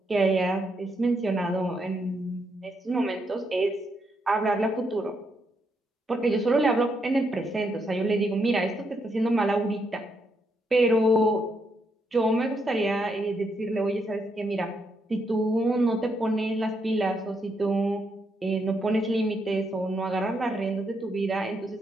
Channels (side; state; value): both; normal; correlation 0.78